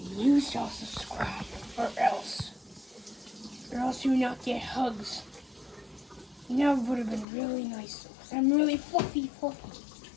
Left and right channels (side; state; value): right; drops out; at 7.2 s